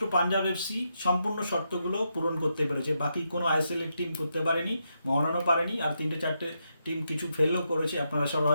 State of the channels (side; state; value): both; inverted; correlation -0.83